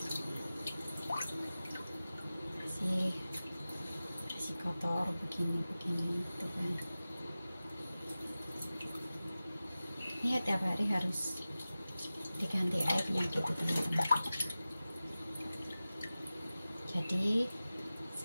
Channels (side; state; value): both; inverted; correlation -0.96